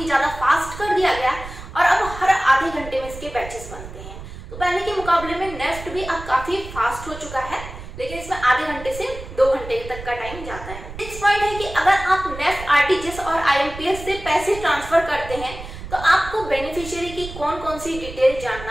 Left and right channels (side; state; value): right; noise; rumble, 12 dB below the sound